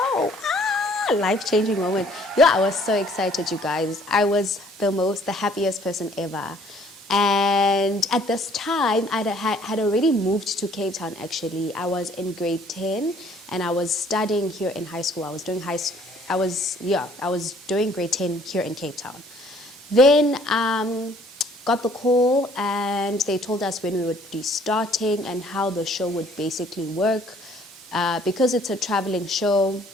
Life-changing moment. Yeah, I was so excited, you guys. I was the happiest person ever. And at this time, I had already moved to Cape Town, actually. I was in grade 10, and I was studying here in high school. I was doing I was doing grade 10 here in Cape Town. Then got the call and they told us when we would be starting and how the show would basically work. Because it's a traveling show,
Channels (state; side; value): normal; both; correlation 0.59